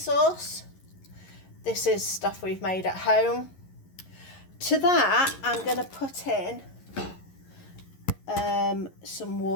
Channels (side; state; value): right; late; 11 ms